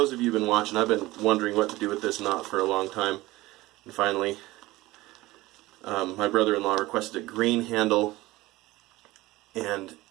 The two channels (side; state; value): left; quieter; 19.0 dB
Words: of you who've been watching, I've been wondering what to do with this knot for a long time, and finally my brother-in-law requested a green handle, and